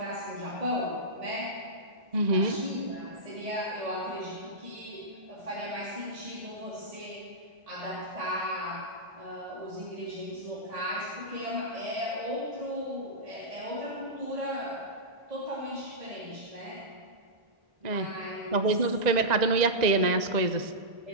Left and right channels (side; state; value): left; late; 1.9 ms